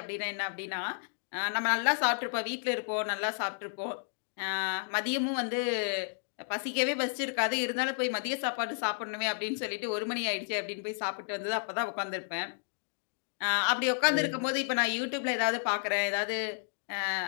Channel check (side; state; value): right; silent; digital silence